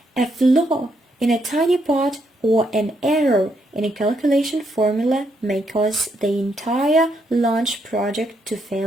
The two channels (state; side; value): normal; both; correlation 0.76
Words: A flaw in a tiny part or an error in a calculation formula may cause the entire launch project to